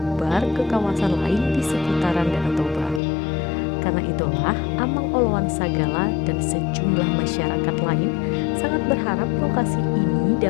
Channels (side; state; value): right; drops out; at 3.0 s